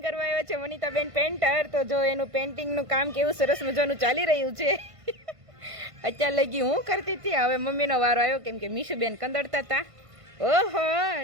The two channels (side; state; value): left; late; 1.5 ms